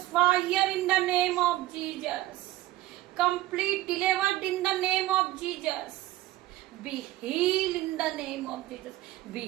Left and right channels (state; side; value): quieter; left; 16.3 dB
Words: fire in the name of Jesus, complete delivered in the name of Jesus, be heal in the name of Jesus,